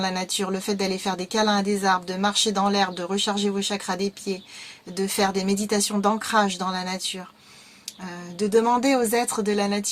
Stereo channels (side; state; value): both; identical; correlation 1.00